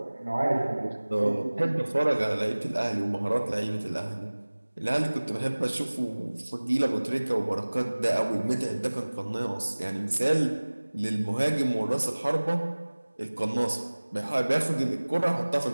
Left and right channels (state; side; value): inverted; both; correlation -1.00